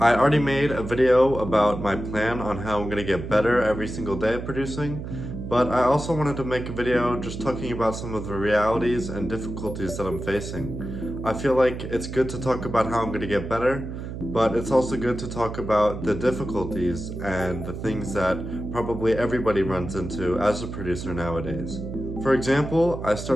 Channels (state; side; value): noise; right; hum, 8 dB below the sound